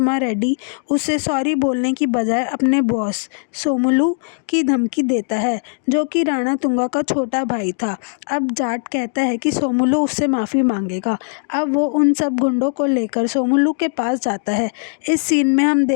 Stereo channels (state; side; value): silent; right; 60 dB below the other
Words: रेड्डी उसे सॉरी बोलने की बजाय अपने बॉस सोमुलू की धमकी देता है, जो कि राणा तुंगा का छोटा भाई था। अब जाट कहता है कि सोमुलू उससे माफ़ी मांगेगा। अब वो उन सब गुंडों को लेकर सोमुलू के पास जाता है। इस सीन में हम